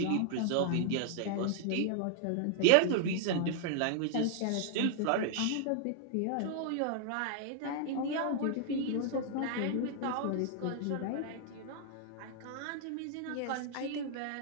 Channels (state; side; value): different; both; correlation -0.01